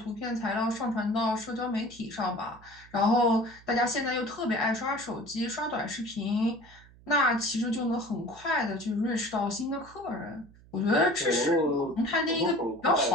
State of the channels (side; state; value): right; noise; hum, 24 dB below the sound